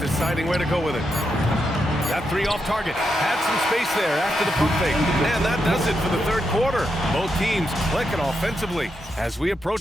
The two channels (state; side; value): normal; both; correlation 0.84